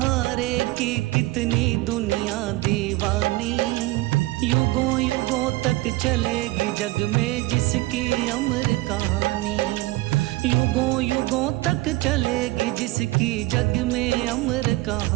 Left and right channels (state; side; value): quieter; left; 19.6 dB